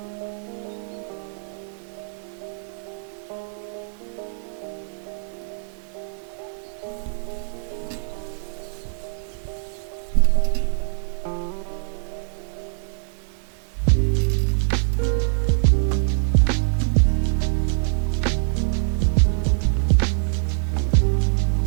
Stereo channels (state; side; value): silent; left; digital silence